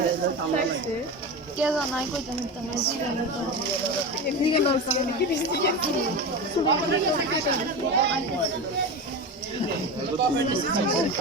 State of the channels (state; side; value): normal; both; correlation 0.24